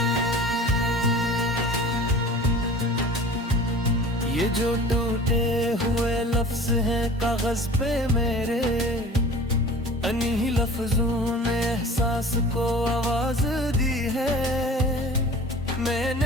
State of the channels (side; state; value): both; normal; correlation 0.42